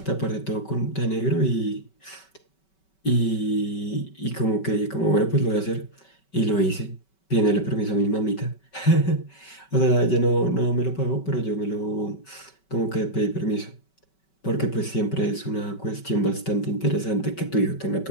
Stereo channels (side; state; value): right; late; 5.2 ms